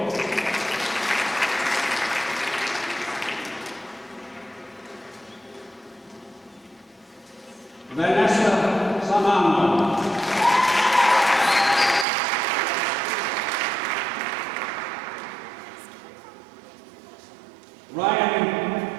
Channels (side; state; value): left; drops out; at 12.1 s